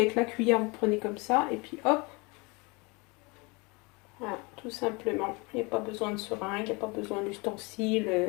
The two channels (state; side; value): quieter; right; 27.6 dB